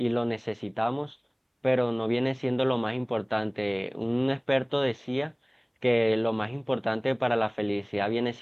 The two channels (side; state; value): both; identical; correlation 1.00